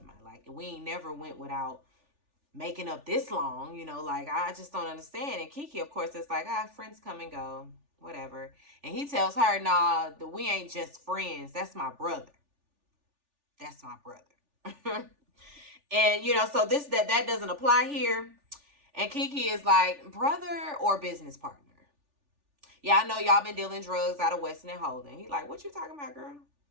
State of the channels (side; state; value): left; late; 3.4 ms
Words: Like, we ain't never went without making up this long. Like, I just don't understand. And Kiki, of course, is like, friends come and go, whatever. And he tells her, nah, we ain't just friends. That's my brother. And so that doesn't apply here. And Kiki is like, brother or business partner? Yeah, I know y'all been dealing drugs out of Weston and Holden. He like, what you talking about, girl?